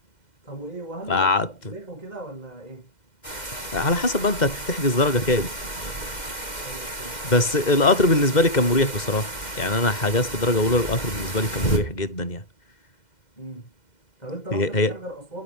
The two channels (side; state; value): right; late; 2.1 ms